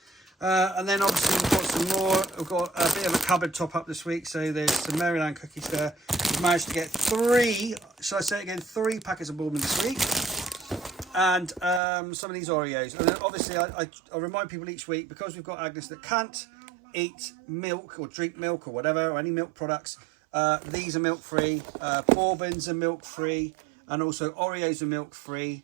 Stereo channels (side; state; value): left; drops out; at 11.8 s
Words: And then obviously we've got some more. We've got a bit of a cupboard top up this week. So there's some Maryland cookies there. We've managed to get 3 packets of Bourbon this week. And some of these Oreos. And then obviously I remind people each week, because we've got Agnes that can't eat milk or drink milk or whatever, or any milk products. These are milk free. Bourbons are milk free. And also Oreos are milk free.